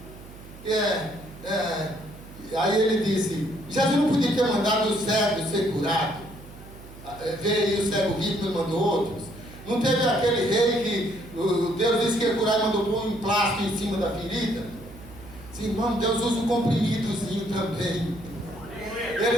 Aí ele disse: Jesus não podia ter mandado o cego ser curado. Veio o cego rico e mandou outros. Não teve aquele rei que Deus disse que ia curar e mandou pôr um plástico em cima da ferida? Sim, irmão, Deus usa um comprimidozinho também.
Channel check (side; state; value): right; noise; hum, 18 dB below the sound